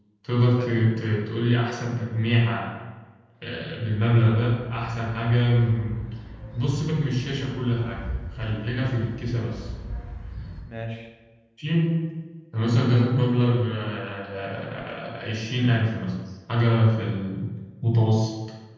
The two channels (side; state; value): both; identical; correlation 1.00